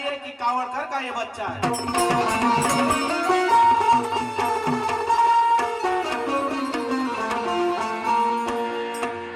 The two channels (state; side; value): identical; both; correlation 1.00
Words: कि कावड़कर का ये बच्चा है।